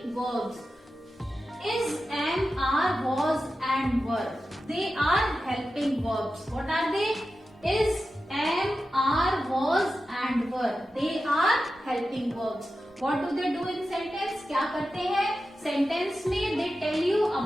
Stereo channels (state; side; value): normal; both; correlation 0.92